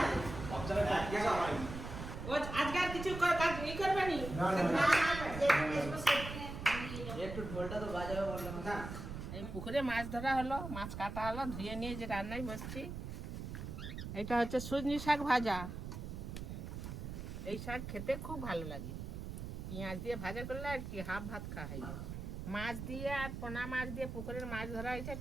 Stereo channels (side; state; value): right; noise; rumble, 7 dB below the sound